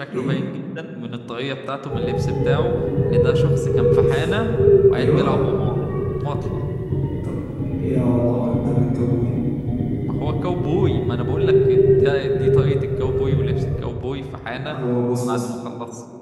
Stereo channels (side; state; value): both; identical; correlation 1.00